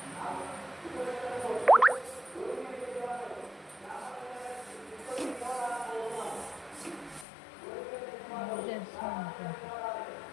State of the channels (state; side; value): drops out; right; at 7.2 s